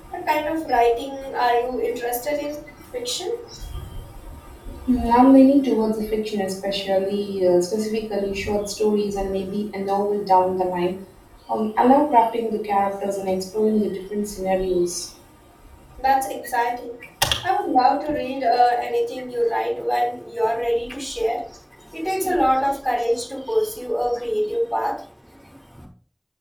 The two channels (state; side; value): identical; both; correlation 1.00